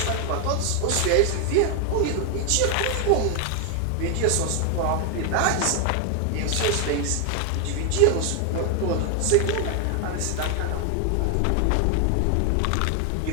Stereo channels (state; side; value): different; both; correlation 0.00